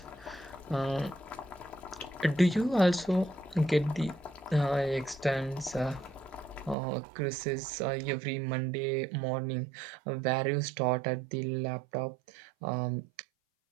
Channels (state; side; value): drops out; left; at 6.8 s